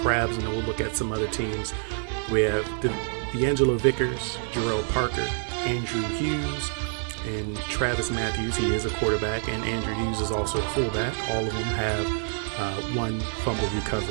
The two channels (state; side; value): silent; left; 60 dB below the other